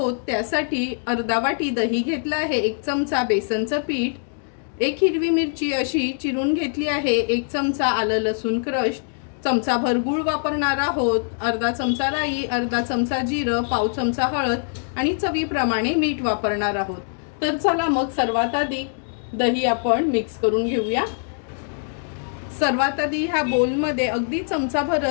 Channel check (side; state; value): right; silent; digital silence